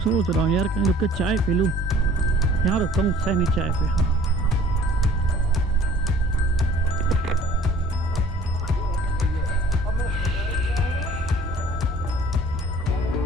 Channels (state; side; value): normal; both; correlation 0.53